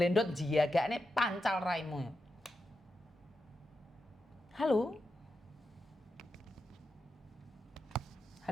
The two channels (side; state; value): both; normal; correlation 0.88